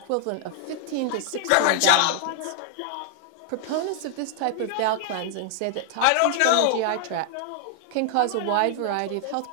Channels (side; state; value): both; different; correlation 0.00